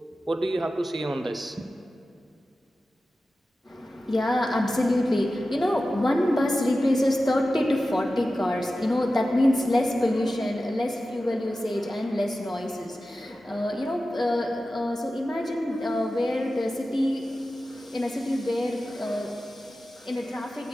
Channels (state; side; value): normal; both; correlation 0.94